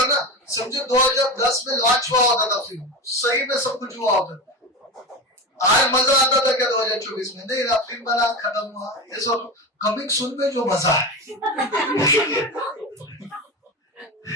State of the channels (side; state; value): both; normal; correlation 0.23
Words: ना। समझो 2010 में लॉन्च हुआ होता था फिल्म, सही में सब कुछ हुआ होता था। आज मजा आता था क्या 2024 में? नहीं ना, फिल्म बना खत्म हुआ। ये सब कमिंग सून में जो मजा है